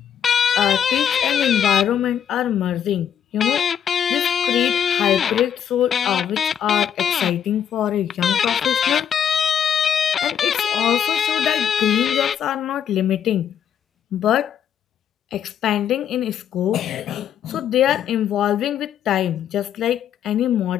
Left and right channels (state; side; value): quieter; right; 8.9 dB